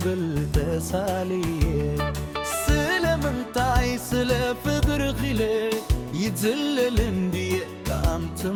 بالتسالي سلام انتاي سلا فقر غلي يتزلل اندي قام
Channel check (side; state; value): both; identical; correlation 1.00